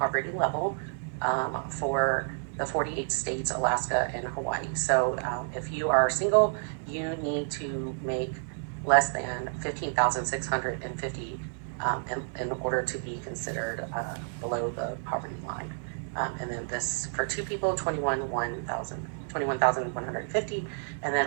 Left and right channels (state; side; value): silent; left; digital silence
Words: level for the 48 states, Alaska, and Hawaii. So if you are single, you need to make less than $15,650 in order to be considered below the poverty line. And then this for two people, 21,150, and then